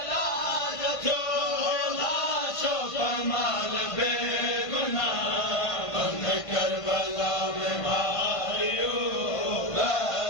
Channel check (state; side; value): late; right; 1.5 ms